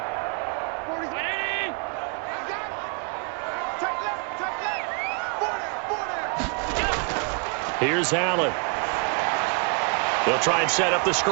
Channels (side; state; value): left; quieter; 37.3 dB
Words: Here's Allen. They'll try and set up the